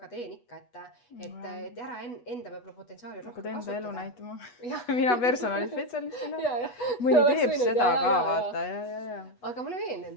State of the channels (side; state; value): right; late; 8.2 ms